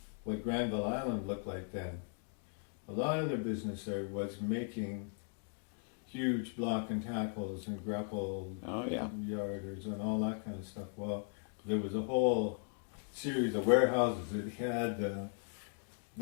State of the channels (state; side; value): silent; right; 53 dB below the other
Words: what Granville Island looked like then. A lot of their business there was making huge block and tackles and grapple yarders and all that kind of stuff. Well, there was a whole series of warehouses that had